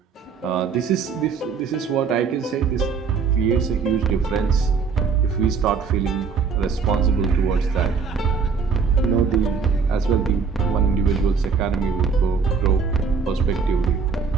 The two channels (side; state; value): left; quieter; 5.5 dB